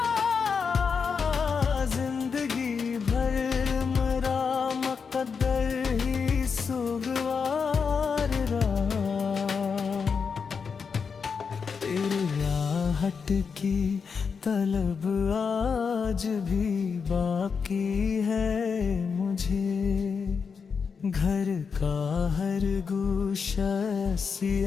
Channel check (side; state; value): right; quieter; 5.8 dB